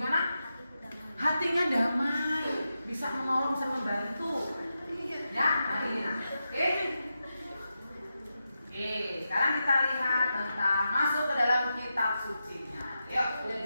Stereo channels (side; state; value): both; inverted; correlation -0.89